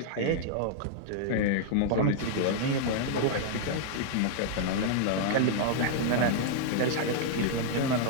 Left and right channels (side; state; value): both; different; correlation -0.01